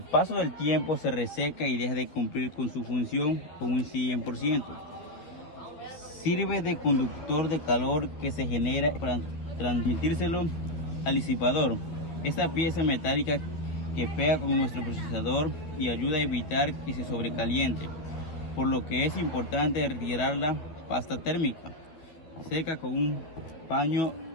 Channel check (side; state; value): right; late; 12 ms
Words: paso del tiempo se reseca y deja de cumplir con su función con un 100%. Sirve de conductor de calor que se genera para transmitírselo al disipador. Esta pieza metálica que pega con nuestro procesador y ayuda a evitar que se sobrecaliente, por lo que es importante retirar la pasta térmica. Seca con un paño